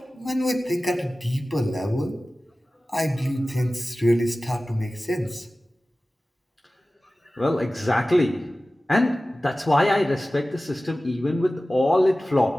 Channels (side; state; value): both; normal; correlation 0.96